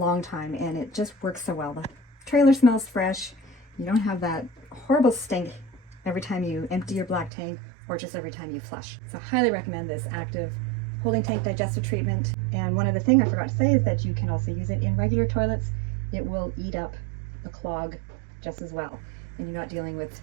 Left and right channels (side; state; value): left; drops out; at 7.3 s